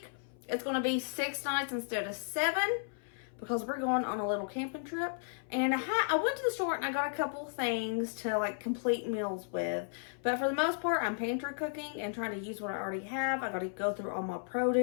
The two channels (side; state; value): right; silent; 55 dB below the other